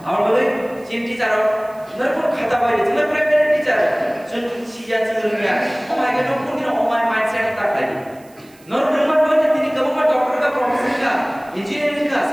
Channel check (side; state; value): right; noise; hiss, 28 dB below the sound